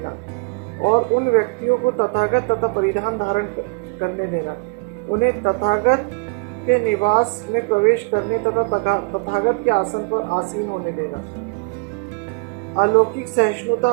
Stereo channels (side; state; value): left; quieter; 33.4 dB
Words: और उन व्यक्तियों को तथागत तथा परिधान धारण करने देना। उन्हें तथागत के निवास में प्रवेश करने तथा तथागत के आसन पर आसीन होने देना। अलौकिक सहिष्णुता